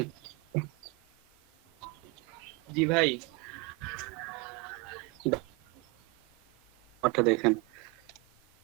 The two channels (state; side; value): quieter; left; 27.9 dB